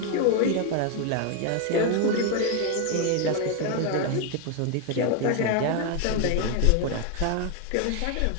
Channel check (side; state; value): both; different; correlation 0.01